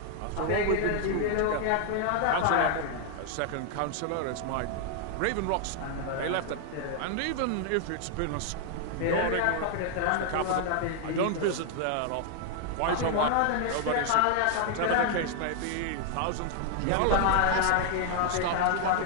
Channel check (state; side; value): different; both; correlation 0.00